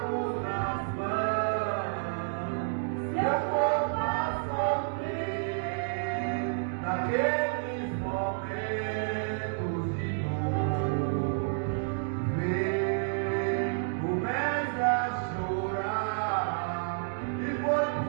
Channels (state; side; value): silent; left; digital silence